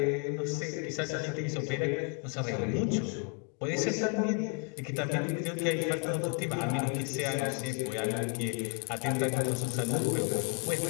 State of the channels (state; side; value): quieter; right; 36.2 dB